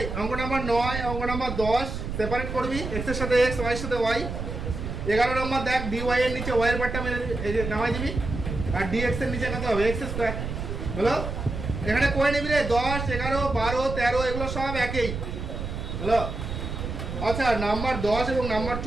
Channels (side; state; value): right; noise; rumble, 5 dB below the sound